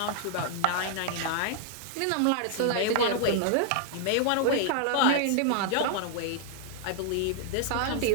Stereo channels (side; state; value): both; different; correlation -0.01